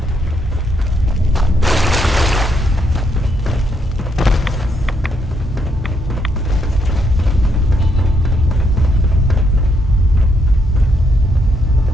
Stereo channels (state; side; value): normal; both; correlation 0.75